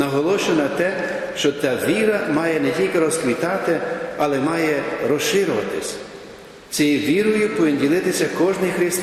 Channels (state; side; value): identical; both; correlation 1.00